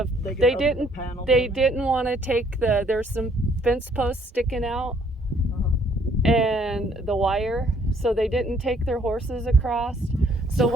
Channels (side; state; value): both; normal; correlation 0.64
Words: They didn't want to take there's some fence posts sticking out and the wire, so they didn't take their horses across. So